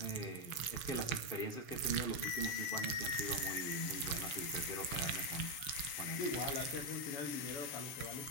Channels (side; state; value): right; late; 7.1 ms